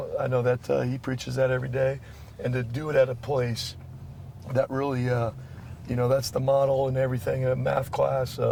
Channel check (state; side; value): identical; both; correlation 1.00